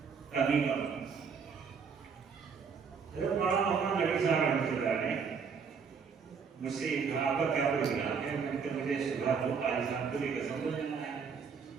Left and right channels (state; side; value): quieter; left; 6.0 dB